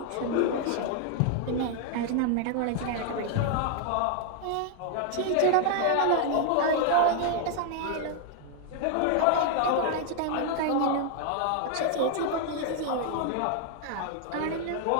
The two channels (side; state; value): both; different; correlation 0.00